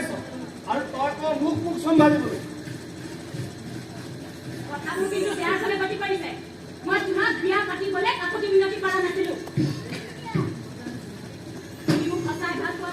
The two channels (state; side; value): identical; both; correlation 1.00